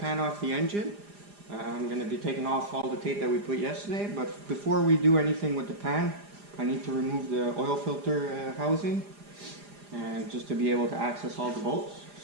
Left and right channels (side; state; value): left; late; 4.9 ms